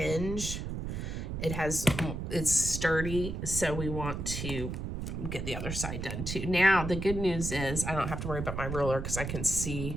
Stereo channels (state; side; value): noise; right; rumble, 4 dB below the sound